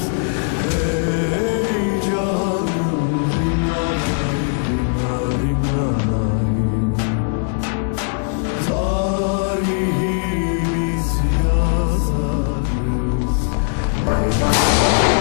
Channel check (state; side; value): silent; right; 63 dB below the other